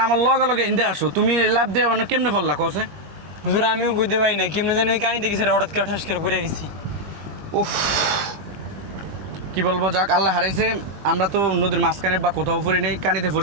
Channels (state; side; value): late; left; 20 ms